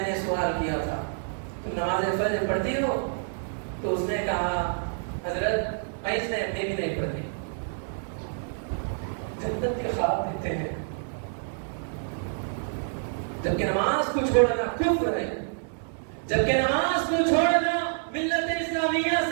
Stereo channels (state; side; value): silent; left; digital silence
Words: نے سوال کیا تھا تم نماز فجر پڑھتی ہو؟ تو اس نے کہا حضرت میں بھی نہیں پڑھتی۔ جنت کے خواب دیتے ہیں جبکہ نماز کو چھوڑنا کفر ہے، جبکہ نماز کو چھوڑنا ملت اسلامیہ